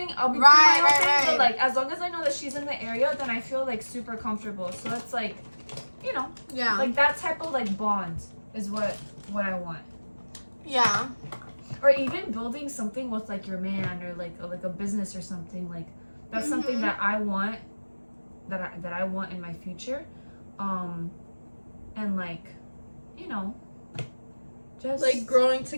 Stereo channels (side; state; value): both; inverted; correlation -1.00